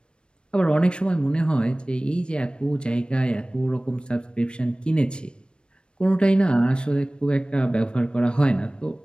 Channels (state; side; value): late; right; 0.055 ms